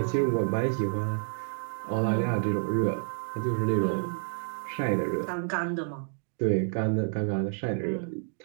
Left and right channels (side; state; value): left; silent; 58 dB below the other